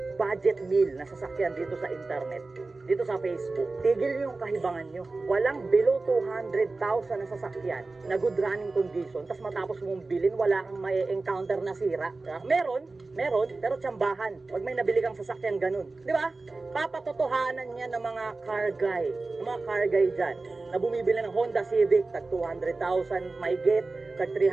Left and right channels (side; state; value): left; quieter; 3.5 dB